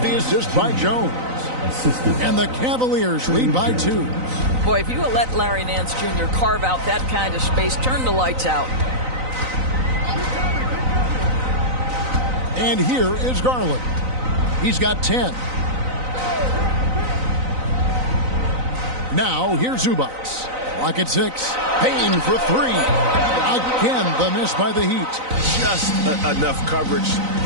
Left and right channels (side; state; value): left; late; 3.9 ms